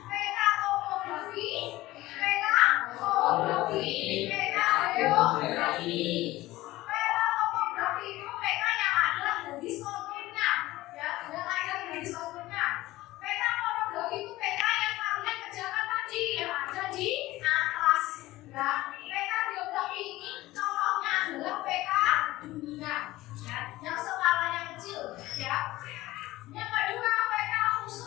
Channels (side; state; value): right; quieter; 17.6 dB